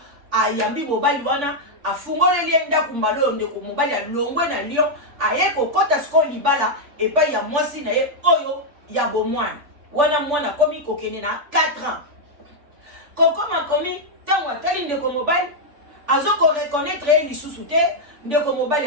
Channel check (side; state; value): left; late; 3.5 ms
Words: ayambi mobali wana afungoleli ndako mbalo ndeko mobali alongwe na lion aye ko kota sko libala epai ya mwasi na ye oyo ya bomwana wana mwana komi kokene na 4 ans kokoma komi tango atali ndeko mobali azoko reconnaître lisusu te ndeko mobali